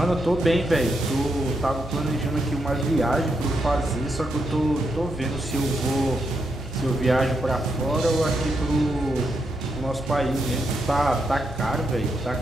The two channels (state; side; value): normal; both; correlation 0.82